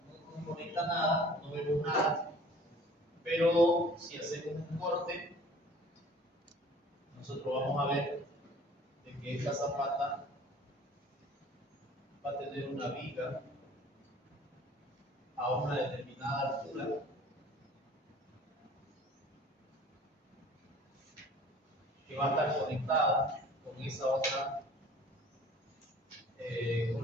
conecta nada, no vemos nada. Pero si hacemos un corte, nosotros vamos a ver de que esta zapata va a tener una viga a una determinada altura que va a estar conectada con esa otra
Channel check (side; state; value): both; normal; correlation 0.49